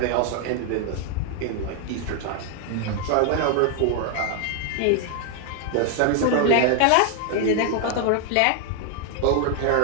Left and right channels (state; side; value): different; both; correlation 0.00